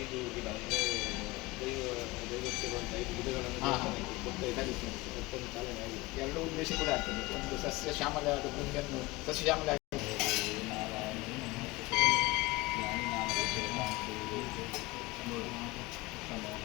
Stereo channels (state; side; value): quieter; right; 22.0 dB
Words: ಗಿಡ ಅಂದರೆ ದೈವಕ್ಕೆ ಬಂದ 5 ಗಿಡಗಳನ್ನು ಮತ್ತೊಂದು ಚಾಲನೆ ಆಗಿದೆ. ಎರಡು ಉದ್ದೇಶ ಕೂಡ ಆಗ್ತದೆ. ಒಂದು ಸಸ್ಯ ಶ್ಯಾಮಲ ಭೂಮಿಯನ್ನು ಸಸ್ಯ ಶ್ಯಾಮಲ